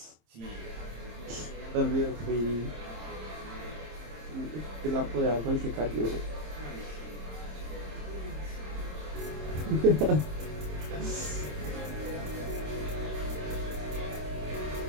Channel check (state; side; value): late; left; 26 ms